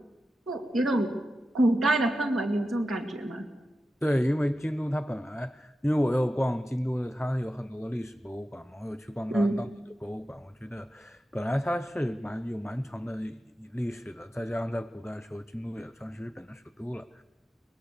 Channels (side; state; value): both; normal; correlation 0.92